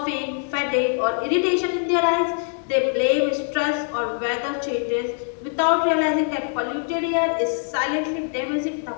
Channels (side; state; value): right; silent; 56 dB below the other